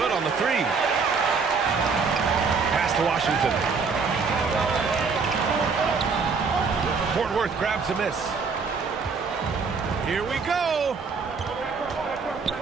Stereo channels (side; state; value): left; quieter; 5.1 dB